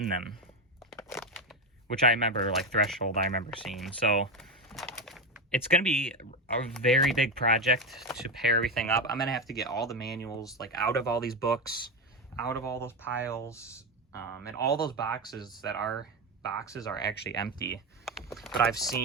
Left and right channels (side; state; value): both; normal; correlation 0.15